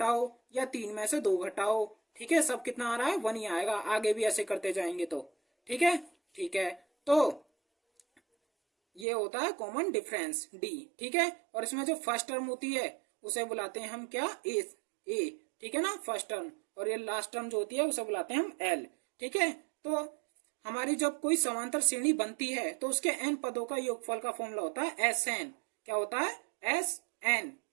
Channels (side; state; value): left; drops out; at 9.1 s